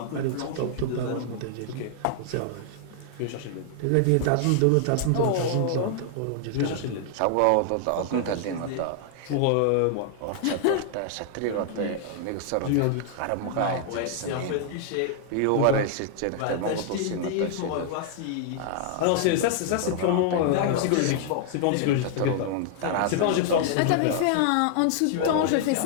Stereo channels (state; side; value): different; both; correlation 0.00